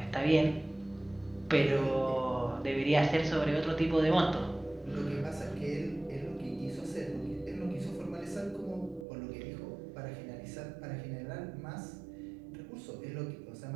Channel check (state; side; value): drops out; left; at 9.1 s